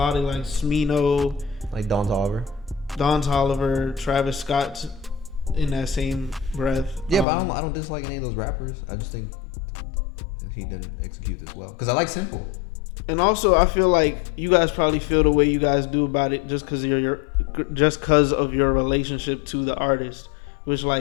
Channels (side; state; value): right; drops out; at 7.2 s